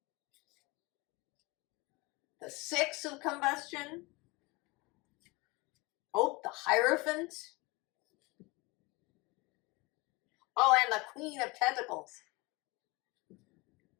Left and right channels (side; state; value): right; quieter; 25.0 dB